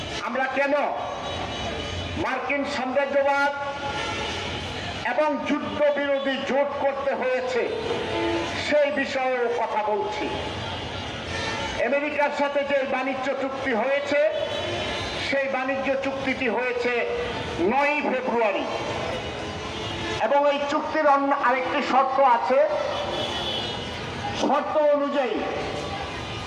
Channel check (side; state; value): both; identical; correlation 1.00